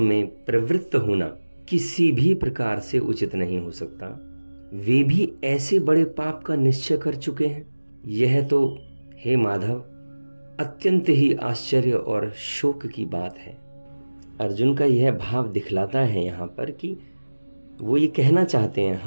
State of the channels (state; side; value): inverted; both; correlation -1.00